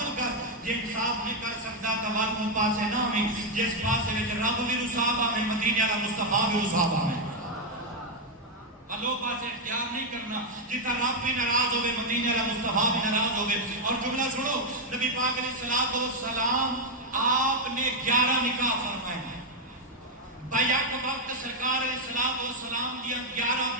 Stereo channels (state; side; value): normal; both; correlation 0.00